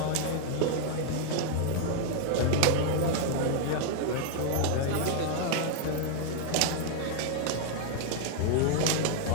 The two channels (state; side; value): different; both; correlation 0.00